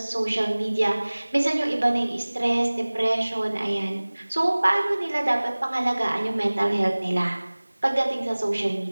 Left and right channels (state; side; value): inverted; both; correlation -1.00